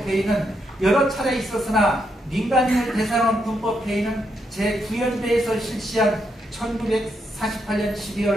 여러 차례 있었으나 민간인을 대상으로 한 군법회의는 제9연대에서 실시한 1948년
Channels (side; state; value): both; normal; correlation 0.80